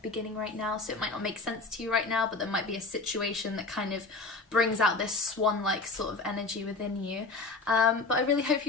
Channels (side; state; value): right; quieter; 3.6 dB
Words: beginning right now, so it might not make sense to you right now, but there might be a situation that kind of brings out this swan-like sort of energy within you. But I really hope